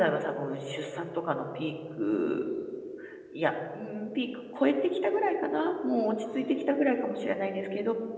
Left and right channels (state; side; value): identical; both; correlation 1.00